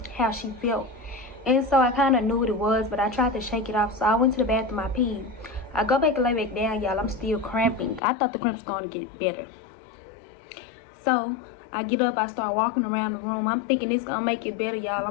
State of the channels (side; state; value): right; drops out; at 8.0 s